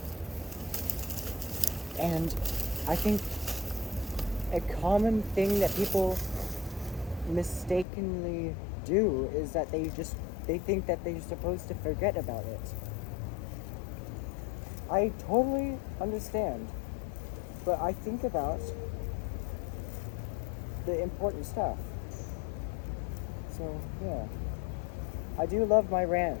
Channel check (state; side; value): drops out; right; at 7.9 s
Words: And I think a common thing that people mistakenly do is that they think that they're supposed to forget about it. I totally understand, but I think about the important stuff. So, yeah. I do love my